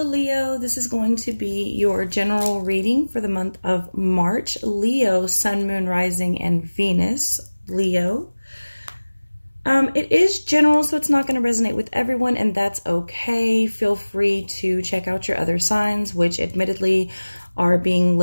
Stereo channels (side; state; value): both; inverted; correlation -1.00